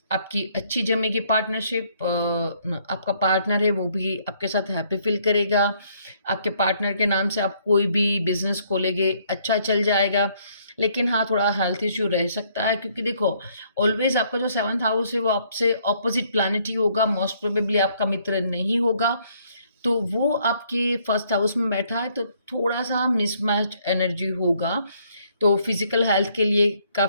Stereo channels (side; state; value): both; inverted; correlation -0.67